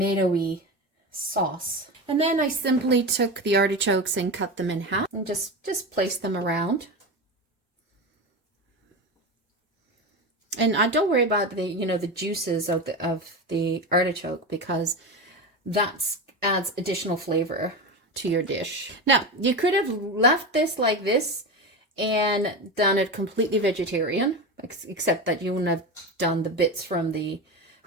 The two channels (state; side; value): normal; both; correlation 0.22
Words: sauce. And then I simply took the artichokes and cut them in half and just place them around. And I don't worry about the juices of the artichoke, because that adds additional flavor to your dish. Now, you could have left this like this and done it completely vegetarian, except that you wouldn't have done the bits from the